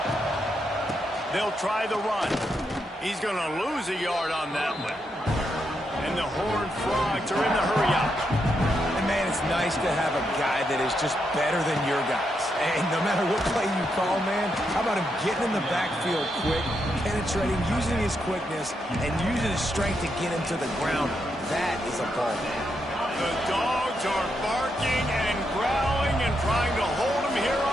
They'll try the run. He's going to lose a yard on that one. And the Horned Frogs are in the hurry-up. And, man, it's nice to have a guy that is just better than your guys. And no matter what play you call, man, how about him getting in the backfield quick, penetrating, using his quickness, and using his strength to get him to the ground. That is a ball. The Dogs are barking and growling and trying to hold him here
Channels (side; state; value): both; normal; correlation 0.81